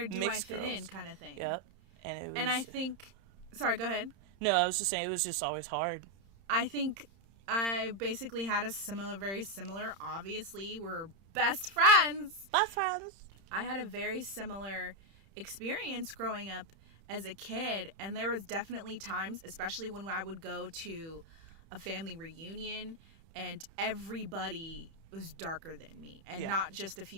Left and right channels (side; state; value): left; late; 31 ms